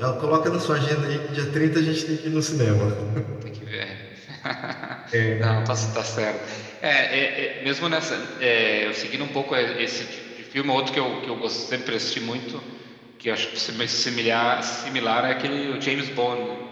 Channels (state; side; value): identical; both; correlation 1.00